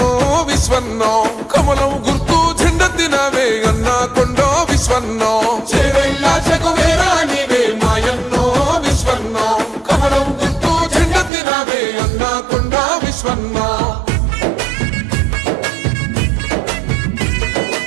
కమలం గుర్తు జెండెత్తినవే అన్నా కొండా విశ్వన్నో, చేవెళ్ళ చెగువేరా నీవే మాయన్నో విశ్వన్నో, కమలం గుర్తు జెండెత్తినవే అన్నా కొండా విశ్వన్నో.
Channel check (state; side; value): drops out; left; at 11.3 s